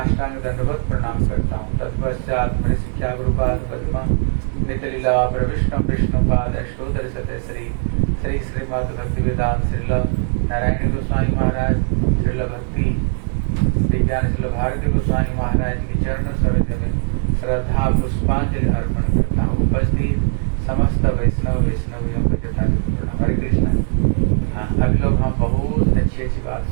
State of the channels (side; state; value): left; silent; digital silence